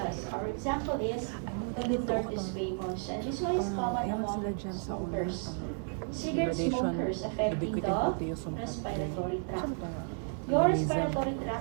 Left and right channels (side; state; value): left; silent; 56 dB below the other